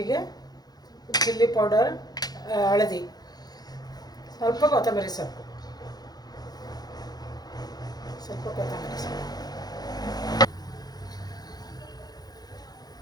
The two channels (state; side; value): late; right; 0.19 ms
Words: ಚಿಲ್ಲಿ ಪೌಡರ್, ಹಳದಿ, ಸ್ವಲ್ಪ ಕೊತ್ತಂಬರಿ ಸೊಪ್ಪು.